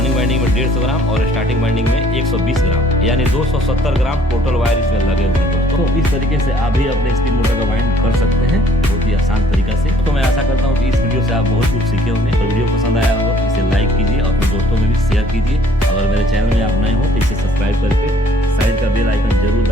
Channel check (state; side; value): normal; both; correlation 0.59